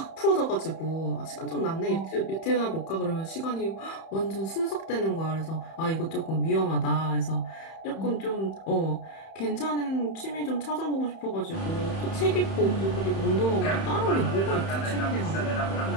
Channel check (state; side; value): late; right; 31 ms